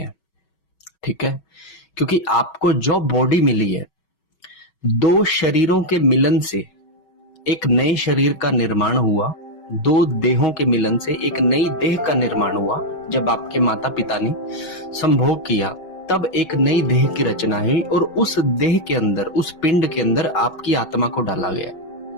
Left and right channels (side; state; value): right; late; 5.3 ms